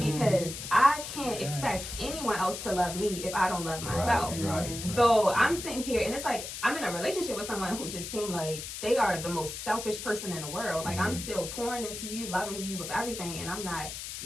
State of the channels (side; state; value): left; noise; hiss, 8 dB below the sound